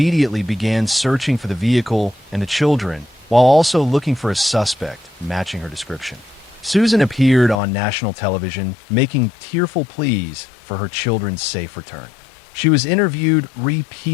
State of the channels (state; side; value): drops out; right; at 7.6 s